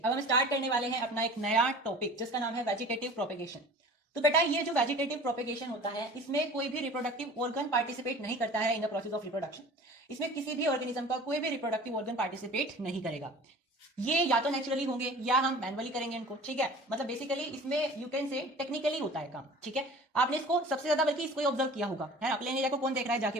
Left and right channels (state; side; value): normal; both; correlation 0.43